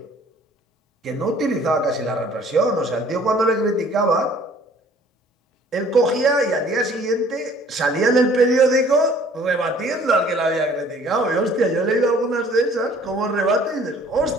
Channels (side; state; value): both; normal; correlation 0.55